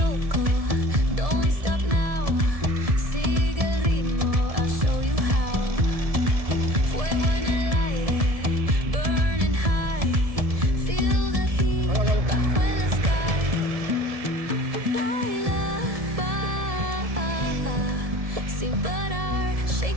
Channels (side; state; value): left; late; 1.7 ms